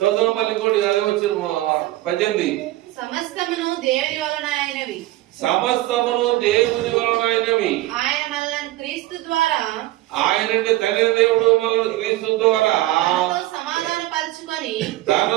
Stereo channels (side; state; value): left; quieter; 16.8 dB